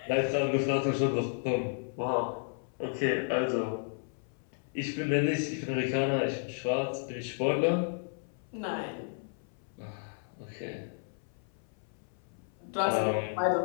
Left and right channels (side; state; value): right; silent; 56 dB below the other